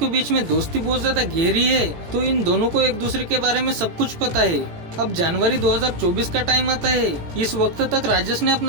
बीच में दोस्ती बहुत ज्यादा गहरी है, तो इन दोनों को एक दूसरे के बारे में सब कुछ पता है। अब जनवरी 2024 का टाइम आता है। इस वक्त तक राजेश ने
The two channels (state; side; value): late; left; 18 ms